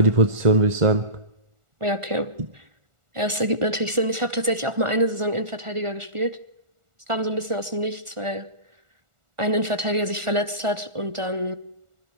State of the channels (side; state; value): left; late; 1.4 ms